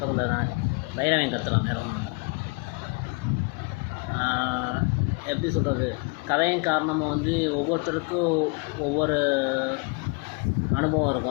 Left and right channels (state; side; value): quieter; right; 30.5 dB